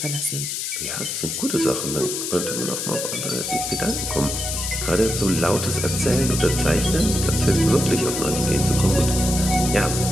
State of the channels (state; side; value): noise; left; hiss, 3 dB below the sound